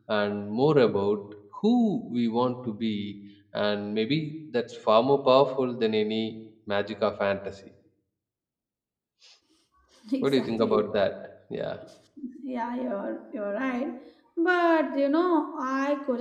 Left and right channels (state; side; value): identical; both; correlation 1.00